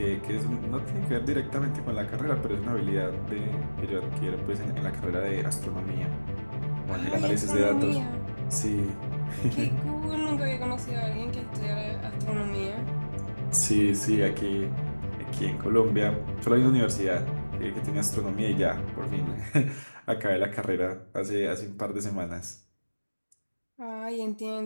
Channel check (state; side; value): inverted; both; correlation -1.00